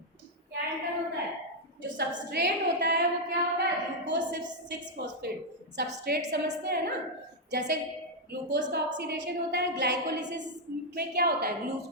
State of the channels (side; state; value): both; normal; correlation -0.01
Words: क्या एंटर होता है? जो सबस्ट्रेट होता है वो क्या होता है? Glucose 6 phosphate. सबस्ट्रेट समझते हैं ना, जैसे ग्लूकोज का ऑक्सीडेशन होता है, ग्लाइकोलिसिस में क्या होता है?